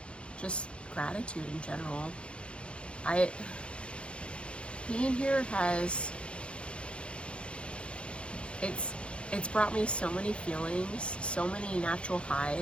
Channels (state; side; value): late; right; 0.058 ms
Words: just gratitude in general. Being here it's brought me so many feelings, so many natural